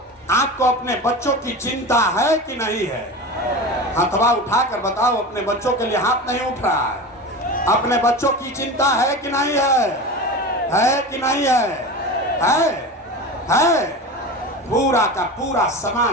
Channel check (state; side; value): normal; both; correlation 0.29